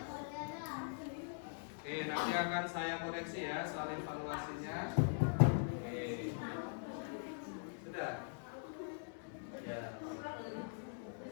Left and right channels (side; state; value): right; silent; digital silence